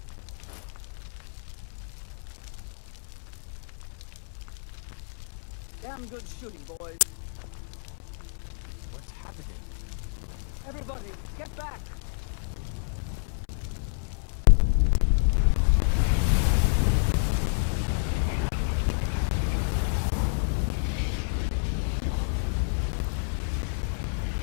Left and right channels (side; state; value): right; silent; 59 dB below the other